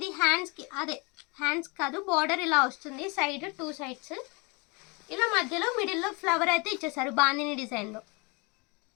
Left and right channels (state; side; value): quieter; right; 27.7 dB